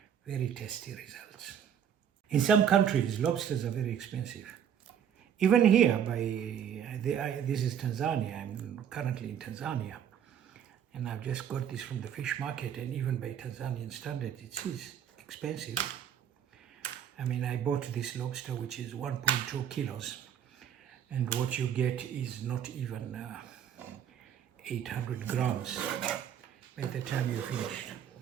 very tasty results. In some countries, lobsters are very expensive. Even here, this is Tanzania. I'm currently in Tanzania, and I've just got this from the fish market, and even by Tanzanian standard, it is expensive. I mean, I bought this lobster, which is 1.2 kilos, and what you get is not even 800 grams by the time you're finished.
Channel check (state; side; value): quieter; left; 8.9 dB